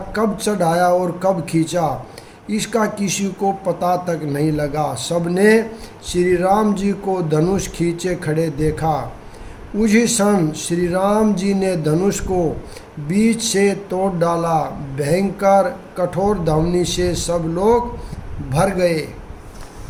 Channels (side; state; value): both; identical; correlation 1.00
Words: कब चढ़ाया और कब खींचा इसका किसी को पता तक नहीं लगा। सबने श्री राम जी को धनुष खींचे खड़े देखा। उसी क्षण श्री राम जी ने धनुष को बीच से तोड़ डाला। भयंकर कठोर धावनी से सब लोग भर गए।